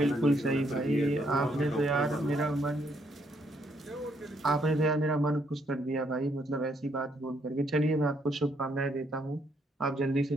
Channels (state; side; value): normal; both; correlation 0.72